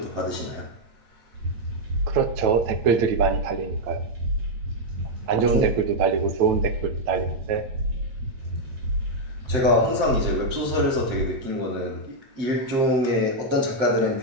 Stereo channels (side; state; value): left; late; 7.8 ms